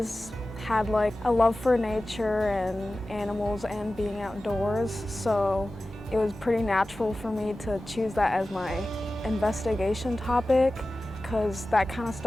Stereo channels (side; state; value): both; normal; correlation 0.95